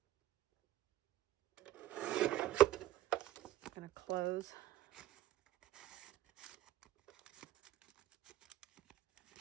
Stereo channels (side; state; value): left; quieter; 14.0 dB